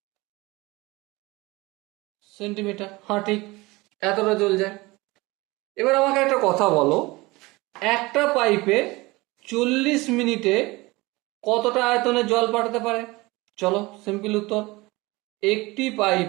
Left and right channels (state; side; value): quieter; left; 22.3 dB